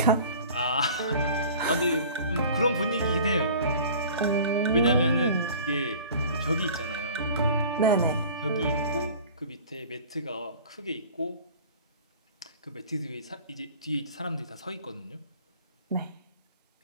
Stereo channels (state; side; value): inverted; both; correlation -0.44